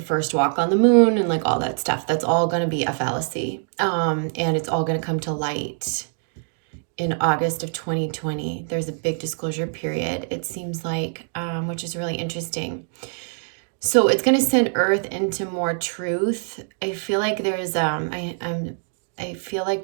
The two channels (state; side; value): silent; left; 63 dB below the other